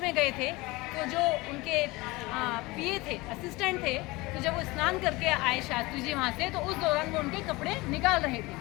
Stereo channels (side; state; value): right; quieter; 22.3 dB